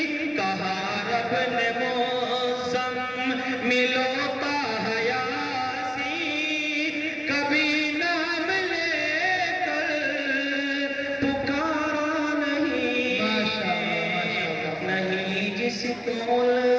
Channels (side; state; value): both; identical; correlation 1.00